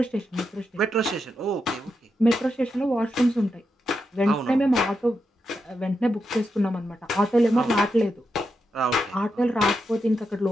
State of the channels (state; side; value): normal; both; correlation 0.86